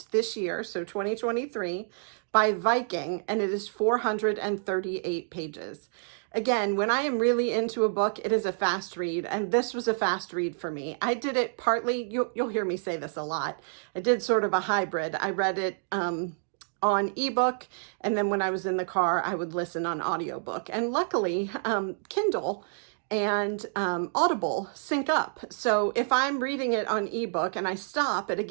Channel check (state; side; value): silent; left; digital silence